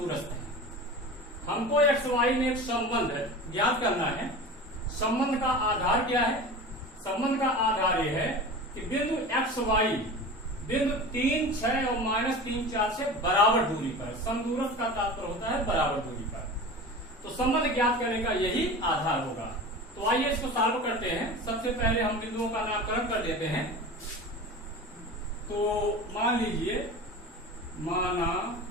है। हमको x y में एक संबंध ज्ञात करना है। संबंध का आधार क्या है? संबंध का आधार यह है कि बिंदु x y बिंदु 3, 6 और -3, 4 से बराबर दूरी पर, समदूरस्थ का तात्पर्य होता है बराबर दूरी पर। तो संबंध ज्ञात करने का यही आधार होगा। तो आइए इसको सॉल्व करते हैं। सबसे पहले हम बिंदुओं का नामकरण कर देते हैं। तो मान लीजिए, माना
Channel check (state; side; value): normal; both; correlation 0.33